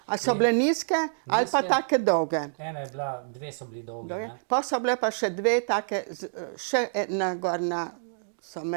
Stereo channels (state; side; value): silent; left; digital silence